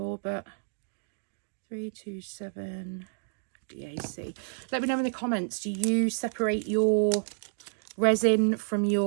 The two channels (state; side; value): silent; left; digital silence